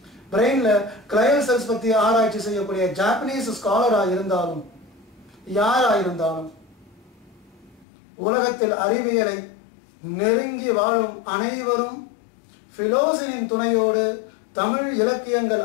பிரெயின்ல கிளையல் செல்ஸ் பத்தி ஆராய்ச்சி செய்யக்கூடிய ஜாப்பனீஸ் ஸ்காலரா இருந்தாலும் யாரா இருந்தாலும் உலகத்தில் அறிவியலை நெருங்கி வாழும் அனைவரும் பிலோசினின் துணையோடு தமிழ் இலக்கியங்கள்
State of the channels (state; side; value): drops out; right; at 7.9 s